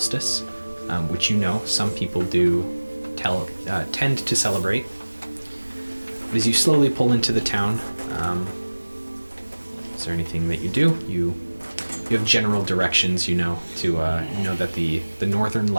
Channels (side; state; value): both; inverted; correlation -1.00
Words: which some people do tend to celebrate. But as you slowly pull into the town, is there anything that you do? You have general directions, to that the Northern